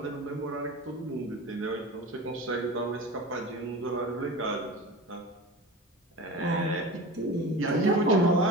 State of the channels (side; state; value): both; normal; correlation 0.32